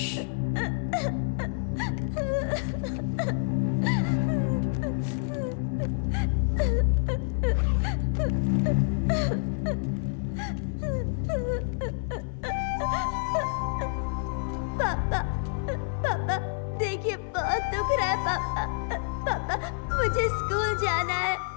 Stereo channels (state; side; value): silent; right; digital silence